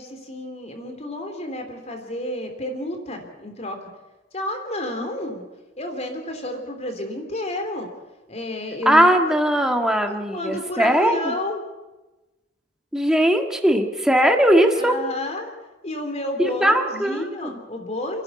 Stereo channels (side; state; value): both; normal; correlation 0.70